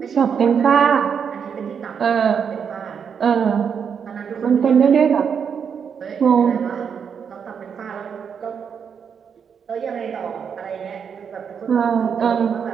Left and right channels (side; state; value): left; quieter; 7.0 dB